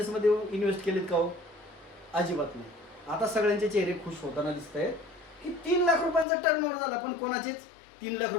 इन्व्हेस्ट केलेत का हो? अजिबात नाही. आता सगळ्यांचे चेहरे खुश होताना दिसत आहेत की 3 लाख रुपयांचा टर्नओव्हर झाला, पण कोणाचेच 3 लाख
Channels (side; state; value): right; drops out; at 6.2 s